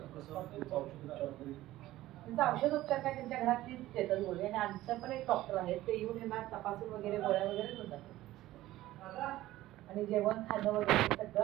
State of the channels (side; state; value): left; quieter; 15.8 dB